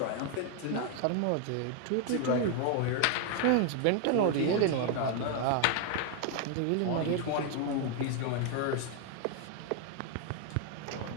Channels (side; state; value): both; different; correlation 0.01